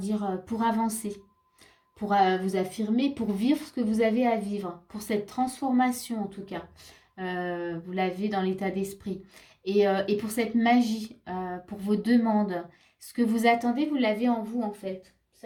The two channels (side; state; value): both; identical; correlation 1.00